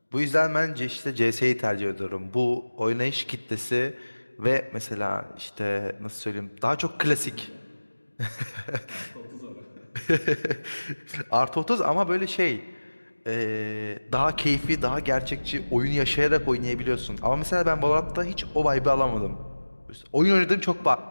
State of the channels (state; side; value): inverted; both; correlation -1.00